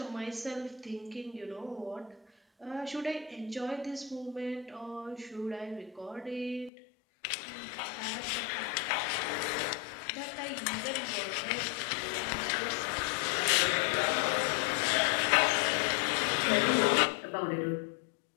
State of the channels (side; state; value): right; drops out; at 6.7 s